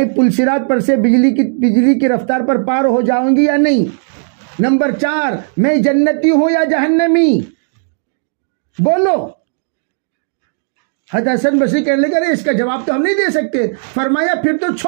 پلسرات پر سے بجلی کی رفتار پر پار ہو جاؤں گی یا نہیں؟ نمبر 4، میں جنتی ہوں یا جہنمی؟ بولو. حضرت حسن بصری کہنے لگے ارے اس کا جواب تو ہم نہیں دے سکتے. فرمایا پھر تو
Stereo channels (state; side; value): silent; left; digital silence